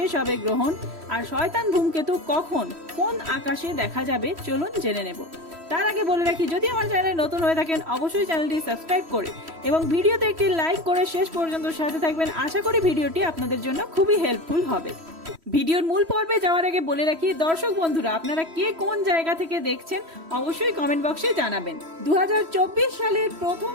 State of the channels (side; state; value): left; late; 3.1 ms